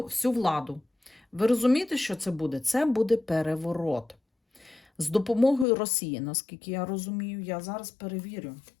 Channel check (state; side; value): drops out; right; at 5.7 s